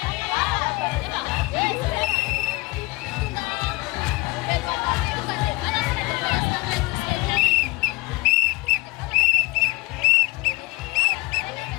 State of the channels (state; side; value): quieter; right; 22.8 dB